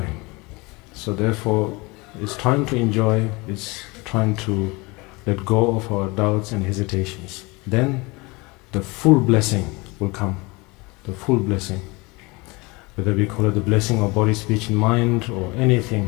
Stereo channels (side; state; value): right; quieter; 25.3 dB